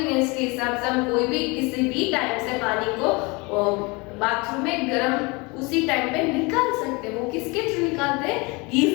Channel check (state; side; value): quieter; right; 26.9 dB